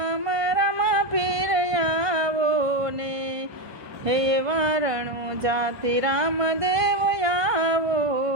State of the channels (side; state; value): left; late; 1.5 ms